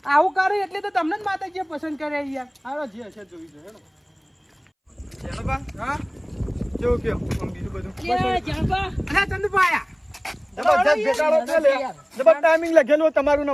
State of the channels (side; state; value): both; identical; correlation 1.00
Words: આવું કરે એટલે તો તમને જ માતાજીએ પસંદ કરે યાર હાલો જી હશે જોઈ જો હેડો ચાલો બા હા કેવું કયો બીજું બધું અરે ચંદુબા આયા જબરજસ્ત બેટાડો છે લે જબર ટાઈમિંગ લખેલું તમારું ને